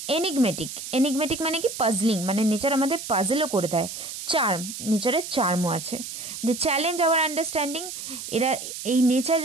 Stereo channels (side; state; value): right; noise; hiss, 9 dB below the sound